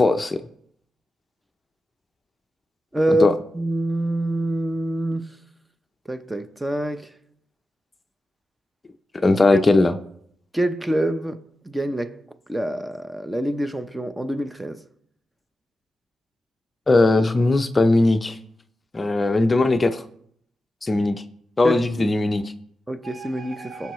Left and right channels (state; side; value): normal; both; correlation 0.93